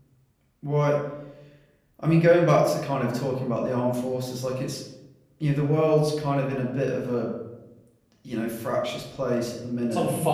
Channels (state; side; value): identical; both; correlation 1.00